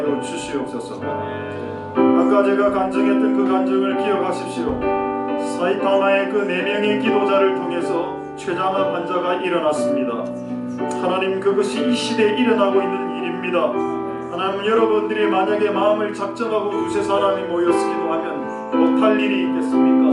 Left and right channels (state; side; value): identical; both; correlation 1.00